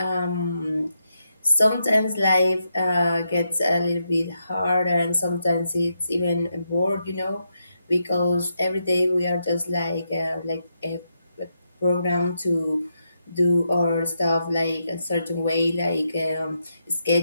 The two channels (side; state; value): both; inverted; correlation -0.83